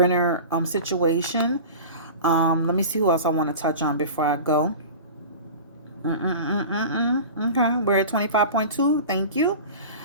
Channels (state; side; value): inverted; both; correlation -0.35